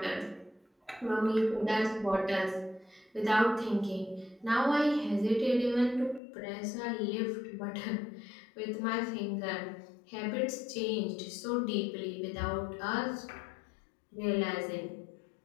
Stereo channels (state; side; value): drops out; right; at 6.2 s